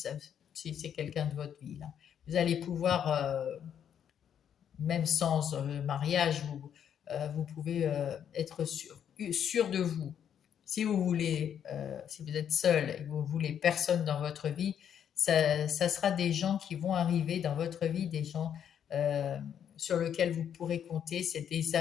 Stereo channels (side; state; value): right; quieter; 8.9 dB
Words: si c'est quelqu'un de votre vie. Là. Vous allez pouvoir, même sans mariage, vous pouvez être sûr de vous. Si vous voulez, si vous êtes seul et que vous voulez personne dans votre vie, ça sera des gens qui vont arriver dans votre vie, des gens sur lesquels vous pourrez compter. C'est des